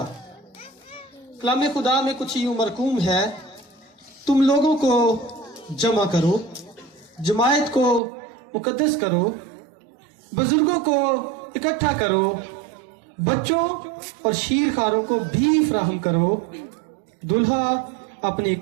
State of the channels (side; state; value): left; drops out; at 8.0 s